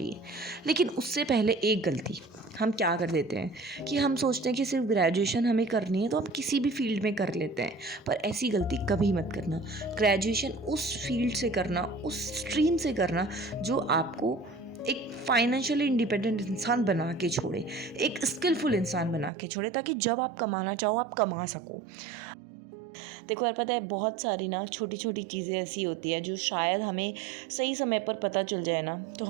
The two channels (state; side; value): drops out; left; at 19.3 s